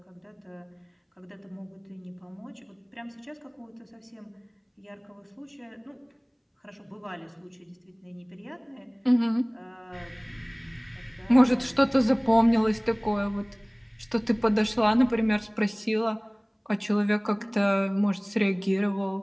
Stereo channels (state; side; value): identical; both; correlation 1.00